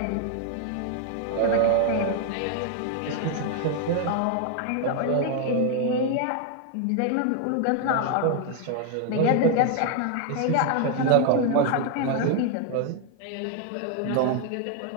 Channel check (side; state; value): both; different; correlation 0.00